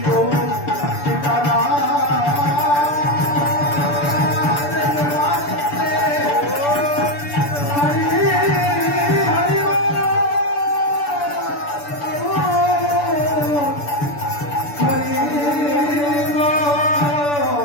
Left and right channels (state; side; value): late; right; 6.9 ms